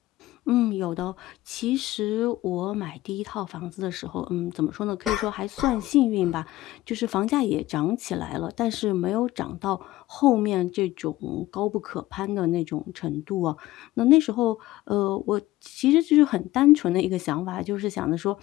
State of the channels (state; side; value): quieter; right; 16.6 dB